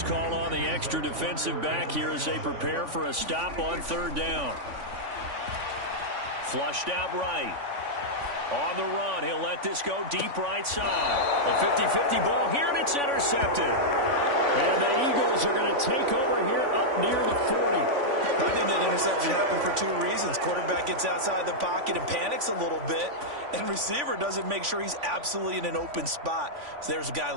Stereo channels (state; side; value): late; left; 3.5 ms